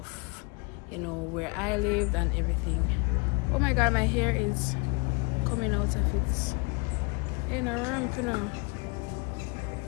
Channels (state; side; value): quieter; right; 29.5 dB